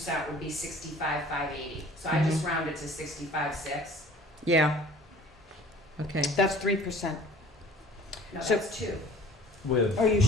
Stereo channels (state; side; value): normal; both; correlation 0.49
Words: would be 65,580. So I just rounded to 65,6. yeah. Okay. That's 3%. No, So- that's 2. With Are you